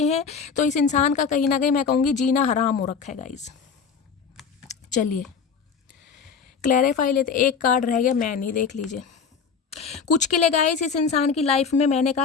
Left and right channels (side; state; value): right; quieter; 6.0 dB